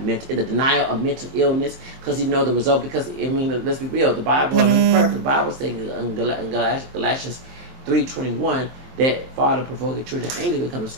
the denial of mental illness, because you know the result. Because I mean, let's be real, the Bible is perfect. The Bible says in Galatians 3:21 that father provoking children of anger become a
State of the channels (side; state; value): left; late; 23 ms